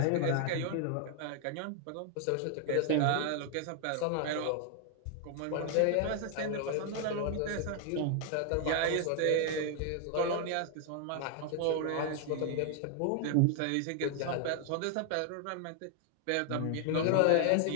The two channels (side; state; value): both; different; correlation 0.00